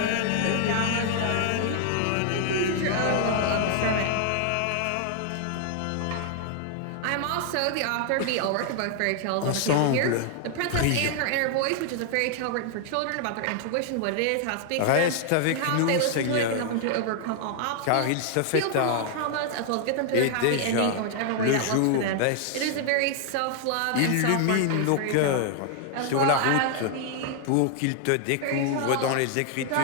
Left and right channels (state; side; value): different; both; correlation 0.00